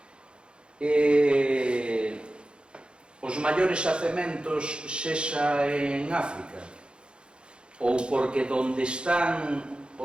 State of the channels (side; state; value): left; late; 0.054 ms